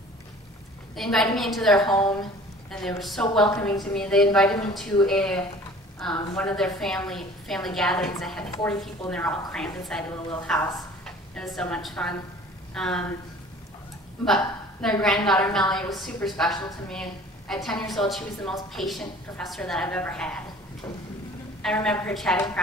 They invited me into their home, and they were so welcoming to me. They invited me to one of their family gatherings that had 40 people, and they were all crammed inside of a little house. It was so much fun. But their granddaughter, Melanie, was super special to me. At 10 years old, she was the most patient professor that I've ever had. I remember her chatting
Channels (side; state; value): both; normal; correlation 0.48